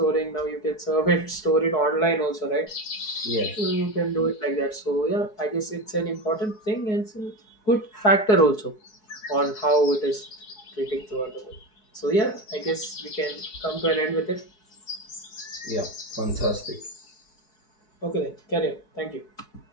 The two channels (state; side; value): late; right; 4.7 ms